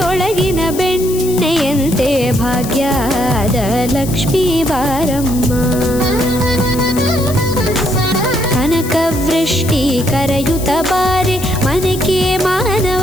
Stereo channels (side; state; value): left; noise; hiss, 11 dB below the sound